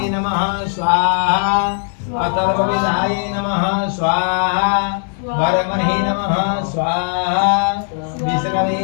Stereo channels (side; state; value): right; silent; 60 dB below the other